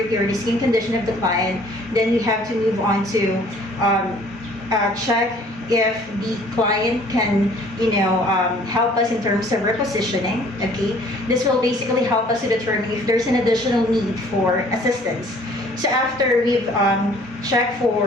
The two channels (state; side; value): normal; both; correlation 0.55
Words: or the skin condition of the client, then we have to move on to check if the client can, help us in terms of repositioning. Okay, this will basically help us to determine if there's an additional need for assistance. So after we've checked